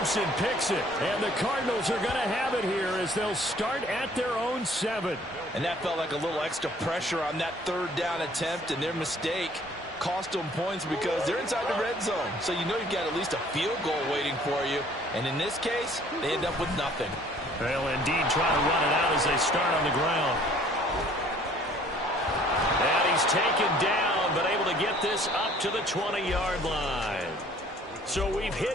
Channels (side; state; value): both; normal; correlation 0.56